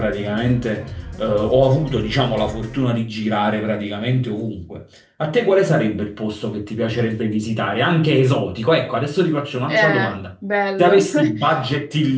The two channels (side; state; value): both; identical; correlation 1.00